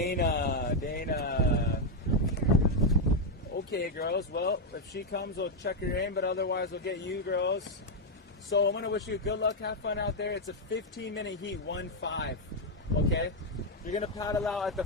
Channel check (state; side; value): normal; both; correlation 0.01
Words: Okay, girls. Well, if she comes, we'll check her in, but otherwise we'll get you girls. So I'm going to wish you good luck. Have fun out there. It's a 15-minute heat, 1-5. Okay? You're going to paddle out at the